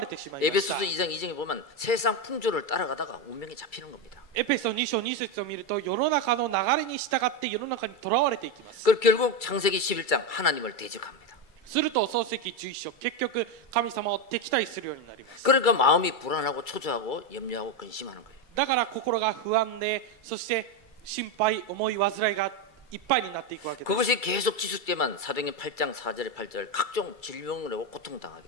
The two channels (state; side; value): late; right; 2.3 ms